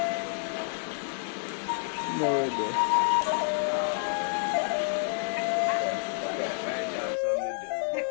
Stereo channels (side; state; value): right; silent; 59 dB below the other